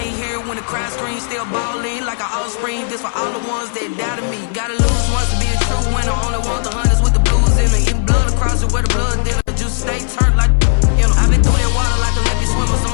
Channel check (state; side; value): silent; right; digital silence